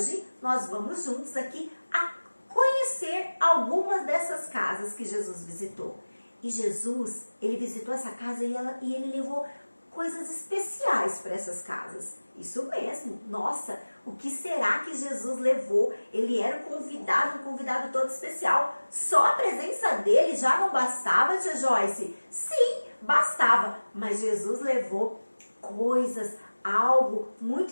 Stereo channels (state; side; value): inverted; both; correlation -1.00